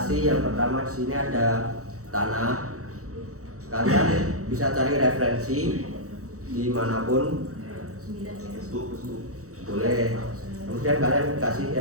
yang pertama di sini ada tanah. Kalian bisa cari referensi dimanapun, boleh. Kemudian kalian kasih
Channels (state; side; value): late; left; 0.65 ms